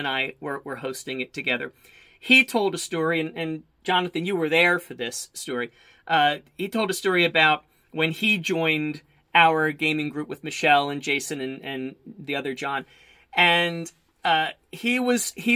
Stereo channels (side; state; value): both; identical; correlation 1.00